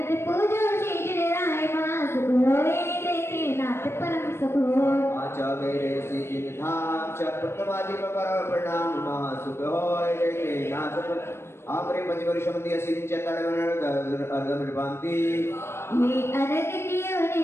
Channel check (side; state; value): right; late; 0.12 ms